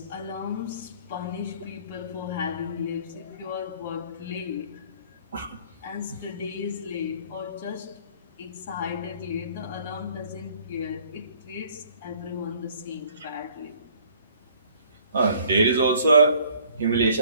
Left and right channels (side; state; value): both; inverted; correlation -0.56